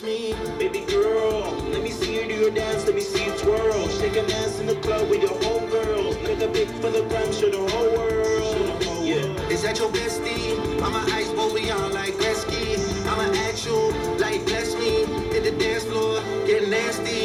me, baby girl. Let me see you do your dance, let me see you twirl. Shake an ass in the club with your homegirls. Make a big for the gram, show the whole world. Yeah, is that your bestie? I'm an ice boy, we on like Gretzky. I'm an actual, like bless me. Hit the dance floor, get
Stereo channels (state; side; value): identical; both; correlation 1.00